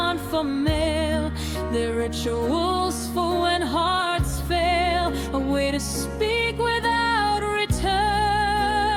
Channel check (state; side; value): identical; both; correlation 1.00